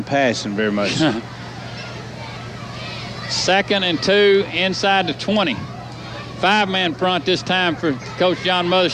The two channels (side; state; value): both; identical; correlation 1.00